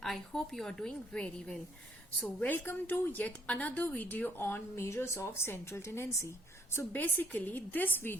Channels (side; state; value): both; normal; correlation 0.66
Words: I hope you are doing very well. So, welcome to yet another video on measures of central tendency. So, basically, this